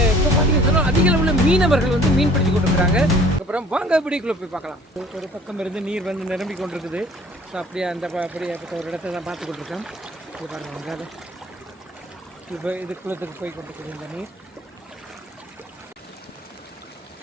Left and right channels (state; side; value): normal; both; correlation 0.52